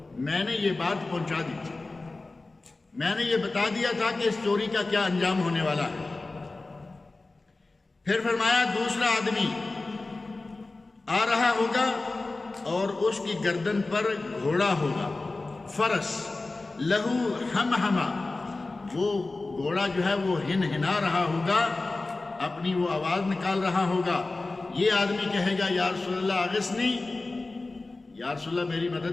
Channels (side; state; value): right; quieter; 3.3 dB